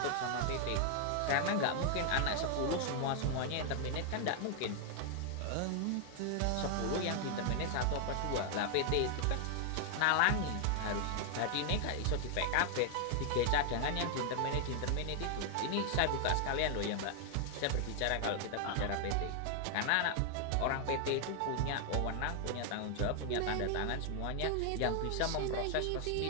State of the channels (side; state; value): both; different; correlation 0.00